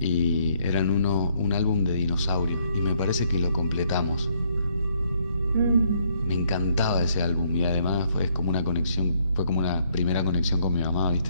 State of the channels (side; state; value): both; inverted; correlation -0.69